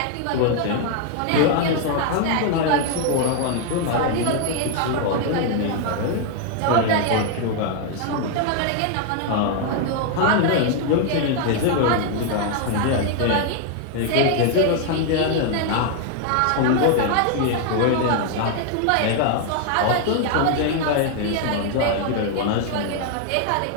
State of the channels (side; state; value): both; different; correlation 0.00